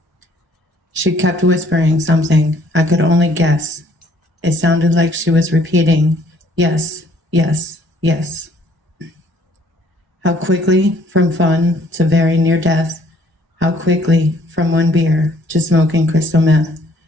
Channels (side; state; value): both; normal; correlation 0.61